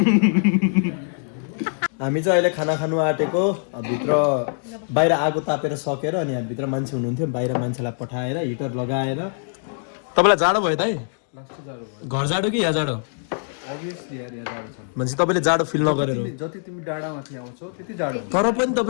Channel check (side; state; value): right; silent; digital silence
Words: हामी चाहिँ अहिले खाना खानु आँटेको भित्र बाहिर आगो तापेर सकेर अनि यहाँ भित्र मान्छे हुनुहुन्थ्यो बाहिर मान्छेलाई पठाएर हिटर लगाएर तपाईँलाई जाडो भयो दाइ घर जाडो कि यहाँ जाडो अभियसली यार यहाँ जाडो छ भनेपछि तपाईँले जाडो फिल नगरेर जति तिमी डाँडामाथि आउँछौ त्यति जाडो तर पनि